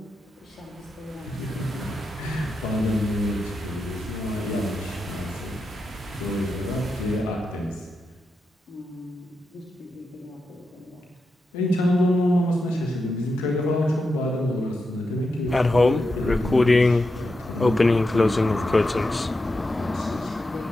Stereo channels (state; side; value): normal; both; correlation 0.88